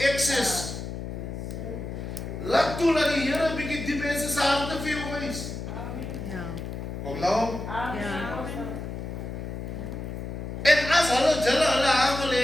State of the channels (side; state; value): left; noise; hum, 7 dB below the sound